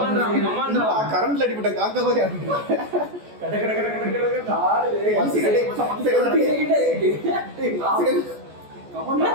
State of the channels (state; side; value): late; left; 14 ms